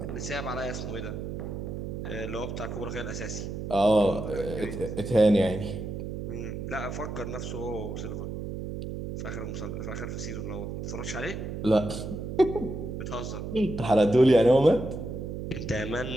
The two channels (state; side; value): noise; right; hum, 6 dB below the sound